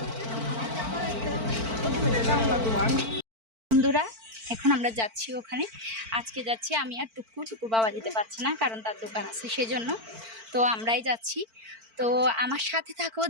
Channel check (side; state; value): left; late; 4.5 ms